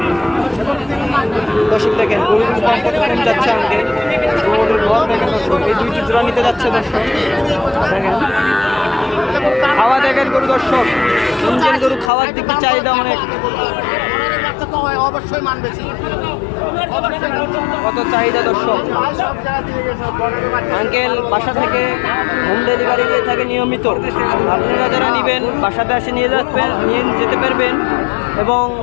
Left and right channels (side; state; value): right; drops out; at 12.1 s